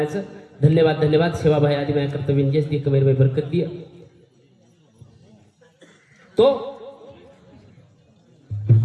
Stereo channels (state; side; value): identical; both; correlation 1.00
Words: धन्यवाद सेवाभाई आदि माझ्या कर्तव्य इंजेस दी कमेर में बरकत दिया तो